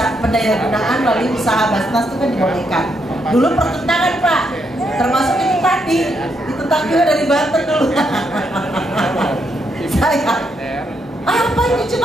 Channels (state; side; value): normal; both; correlation 0.78